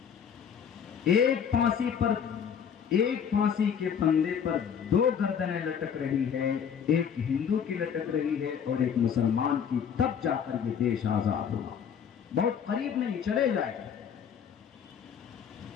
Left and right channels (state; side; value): quieter; right; 7.6 dB